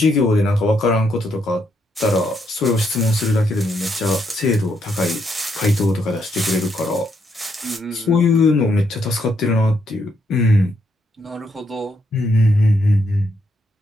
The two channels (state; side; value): normal; both; correlation 0.76